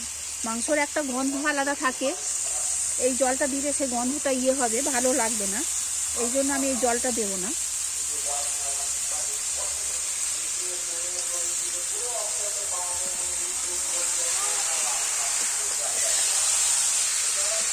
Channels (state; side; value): identical; both; correlation 1.00